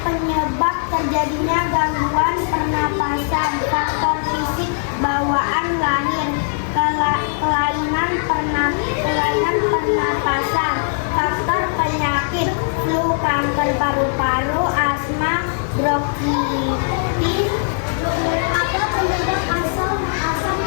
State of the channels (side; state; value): right; silent; digital silence